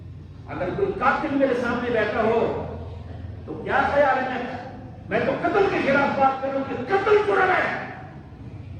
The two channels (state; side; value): identical; both; correlation 1.00